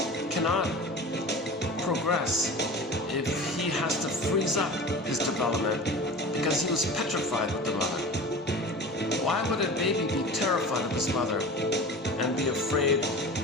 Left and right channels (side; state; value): both; normal; correlation 0.35